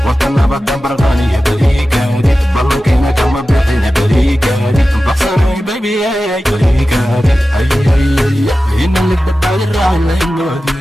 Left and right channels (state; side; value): normal; both; correlation 0.94